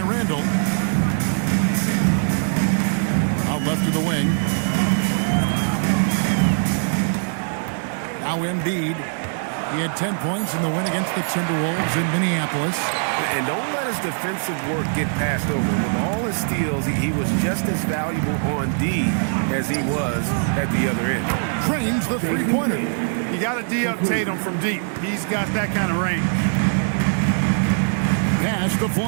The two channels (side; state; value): left; silent; 64 dB below the other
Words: Randall. Out left to the wing. Now Embiid. He had 10 points in the win against the Timberwolves in Minneapolis. And don't let his defensive work get passed over. With all his steals, he was just as valuable on D as he was at the other end. Trains the three-pointer. You got to D-up Tatum from deep. He's got that kind of range. Pass to